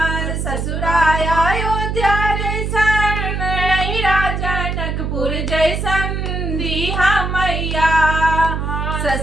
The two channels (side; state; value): right; noise; hum, 2 dB below the sound